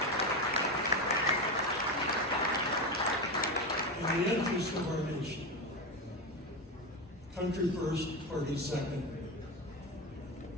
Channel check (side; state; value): both; normal; correlation 0.17